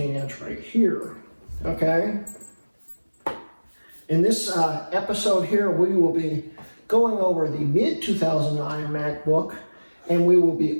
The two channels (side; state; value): both; inverted; correlation -1.00